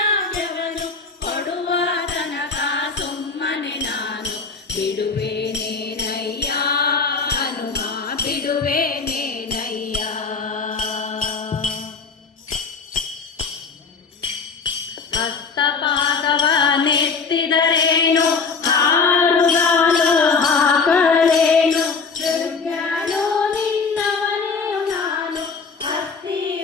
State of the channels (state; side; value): quieter; right; 4.9 dB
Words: ಕೊಡುವ ತನಕ ಸುಮ್ಮನೆ ನಾನು ಬಿಡುವೆ ನೇನಯ್ಯ ಹನುಮ ಬಿಡುವೆ ನೇನಯ್ಯ. ಹಸ್ತಪಾದವ ನೆತ್ತಿದರೇನು ಹಾರುಗಾಲು ಹಾಕಲೇನು, ದುರ್ಗನು ನಿನ್ನವನೇ ನಾನು